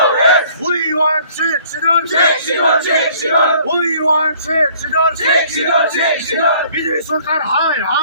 We want Chidon. We want Chidon. BJP Sarkar high.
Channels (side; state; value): both; inverted; correlation -0.57